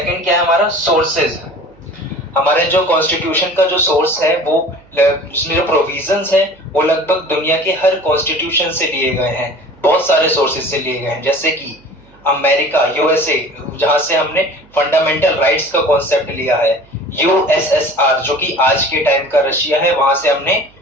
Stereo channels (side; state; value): right; noise; hum, 29 dB below the sound